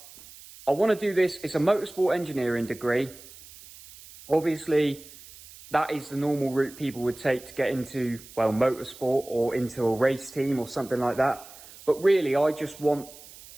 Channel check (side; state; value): right; noise; hiss, 19 dB below the sound